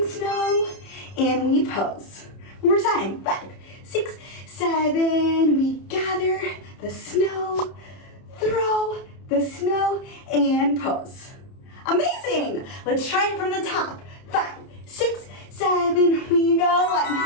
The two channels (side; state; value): right; late; 30 ms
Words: snow, and we pose. One more time. 5, 6, 7. We gather the snow, throw the snow, and pose. Amazing! Let's try it from the top. 5, 6, 7. We go.